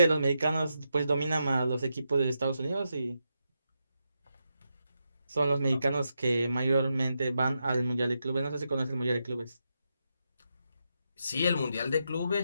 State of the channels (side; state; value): both; inverted; correlation -0.85